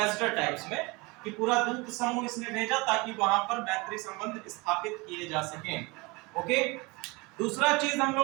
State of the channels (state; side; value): quieter; left; 25.7 dB